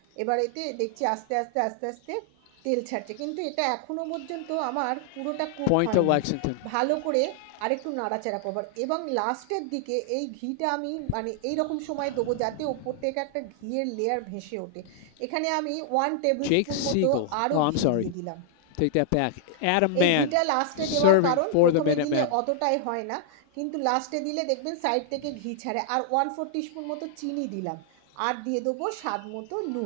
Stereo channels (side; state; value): both; different; correlation -0.01